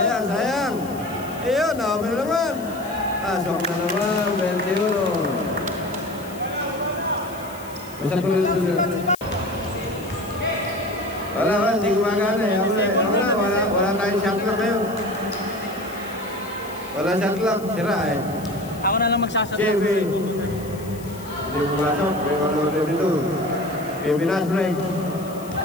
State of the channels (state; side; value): noise; left; hiss, 19 dB below the sound